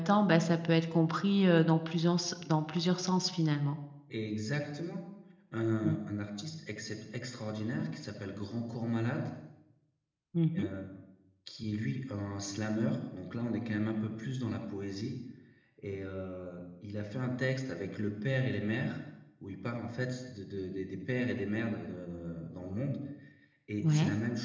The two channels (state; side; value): identical; both; correlation 1.00